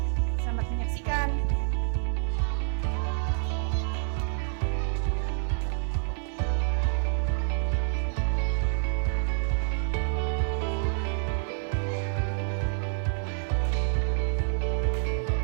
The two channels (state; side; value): silent; left; 59 dB below the other